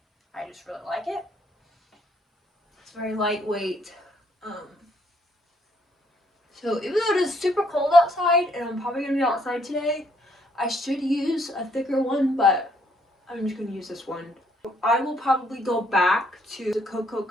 I just really like it. It's very lightweight. So even though it is super cold outside, and I'm probably gonna be outside today, I should use a thicker one, but I'm just gonna use this one. I will probably go back to the Cocoa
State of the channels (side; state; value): both; normal; correlation 0.68